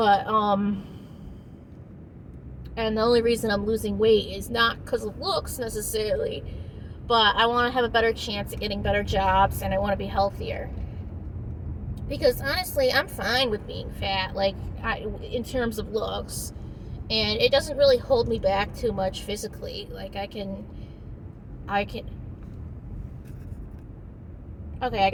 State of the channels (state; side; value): identical; both; correlation 1.00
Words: and the only reason I'm losing weight is not because of looks necessarily, but I want to have a better chance at getting better jobs, and I want to be healthier. Because honestly, I'm fine with being fat, in terms of looks, and it doesn't really hold me back too much physically. Like I can. Okay, I